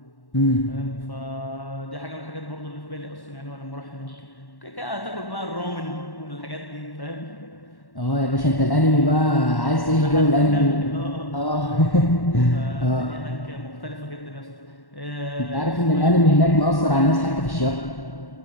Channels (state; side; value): late; right; 1.1 ms